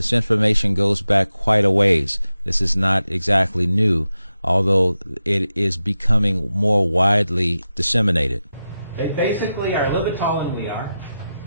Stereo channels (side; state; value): both; inverted; correlation -0.91